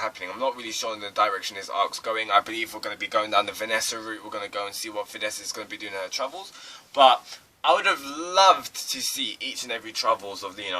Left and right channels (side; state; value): both; identical; correlation 1.00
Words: I'm not really sure in the direction this arc's going. I believe we're going to be going down the Vanessa route. We're going to go and see what Vanessa is going to be doing in her travels. But I would have loved to see each and every travels of, you